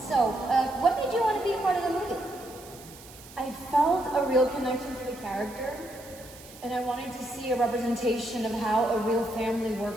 what made you want to be a part of the movie? I felt a real connection to the character, and I wanted to see a representation of how a real family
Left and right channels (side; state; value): right; noise; hiss, 19 dB below the sound